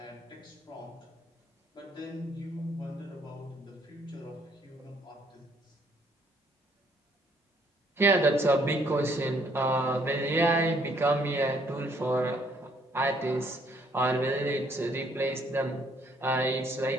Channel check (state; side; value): normal; both; correlation 0.66